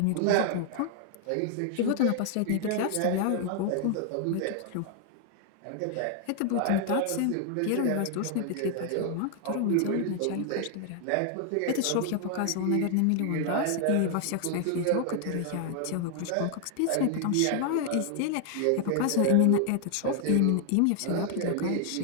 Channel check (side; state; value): both; different; correlation 0.00